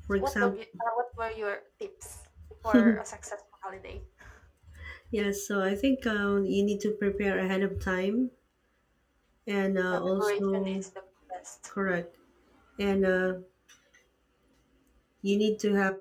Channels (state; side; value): identical; both; correlation 1.00